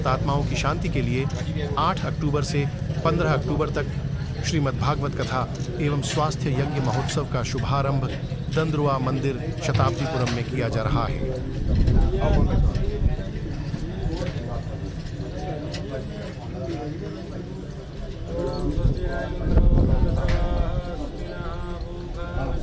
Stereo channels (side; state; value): both; identical; correlation 1.00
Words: की शांति के लिए 8 अक्टूबर से 15 अक्टूबर तक श्रीमद् भागवत कथा एवं स्वास्थ्य यज्ञ महोत्सव का शुभारंभ दंदरौवा मंदिर शताब्दीपुरम में किया जा रहा है।